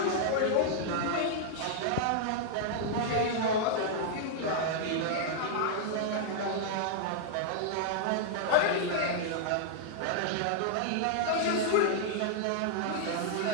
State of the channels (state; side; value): different; both; correlation -0.01